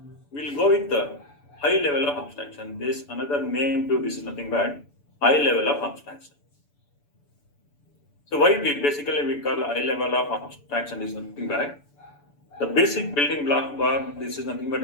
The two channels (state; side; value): late; right; 6.9 ms